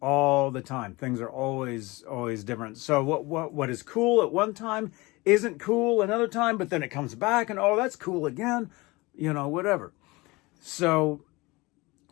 All the time. Things are always different. So what is cool at one time isn't cool another time, but then it comes back and, oh, that's cool again, you know, whatever. So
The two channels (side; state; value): right; quieter; 23.0 dB